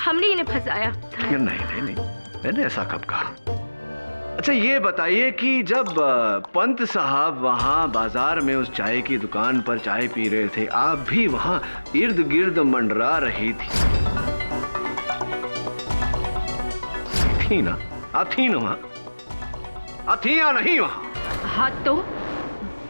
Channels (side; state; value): both; inverted; correlation -1.00